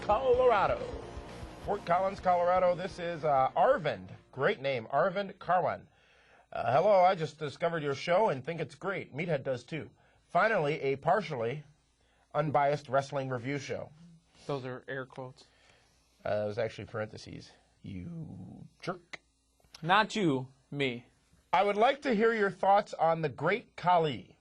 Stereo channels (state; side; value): identical; both; correlation 1.00